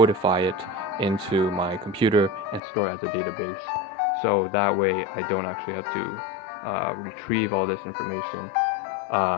it into my computer and store it as a database. So that way I don't actually have to retrieve all this information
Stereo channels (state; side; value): drops out; right; at 2.6 s